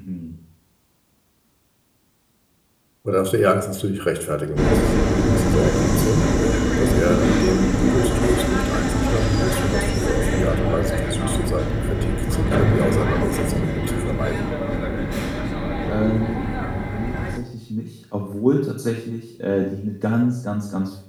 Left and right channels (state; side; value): identical; both; correlation 1.00